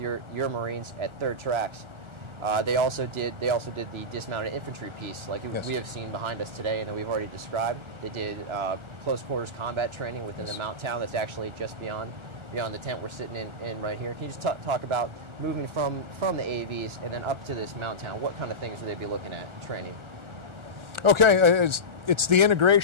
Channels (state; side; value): late; left; 1.4 ms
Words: Marines at 3rd Tracks, they also did the dismounted infantry piece, like we have seen behind us today, and that we've already described. They did close quarters combat training within the mount town that's actually just beyond the tent we're sitting in right here. Can you just talk about moving from the AAVs and then up to this mount town? What kind of things would they be looking at training? Okay, it's the